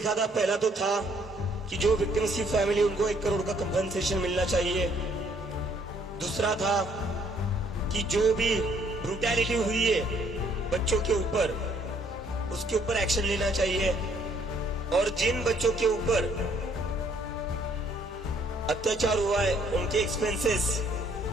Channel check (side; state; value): both; normal; correlation 0.65